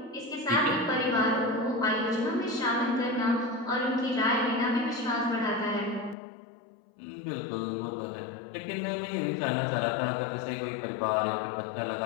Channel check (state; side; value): drops out; right; at 6.2 s